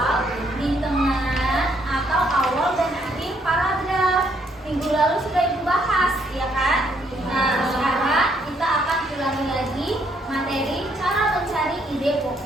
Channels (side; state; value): both; normal; correlation 0.70